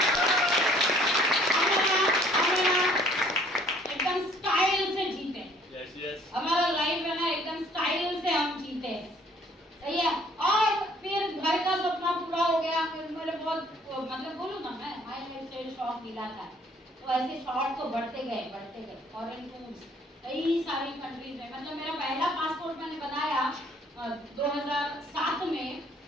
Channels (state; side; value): normal; both; correlation 0.59